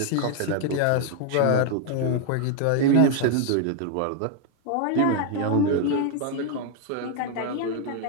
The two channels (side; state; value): both; different; correlation 0.00